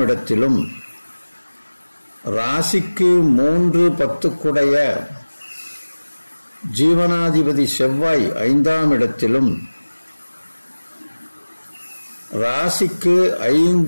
இடத்திலும், ராசிக்கு 3-10 குடைய ஜீவனாதிபதி செவ்வாய் 5ஆம் இடத்திலும், ராசிக்கு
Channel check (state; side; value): inverted; both; correlation -1.00